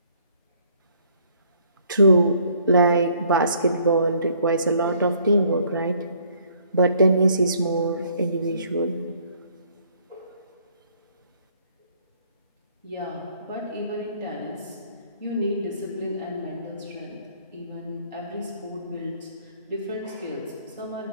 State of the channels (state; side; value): inverted; both; correlation -0.63